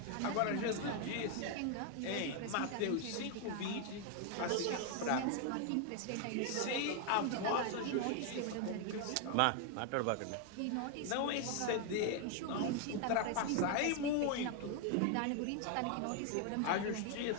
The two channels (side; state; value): both; different; correlation 0.00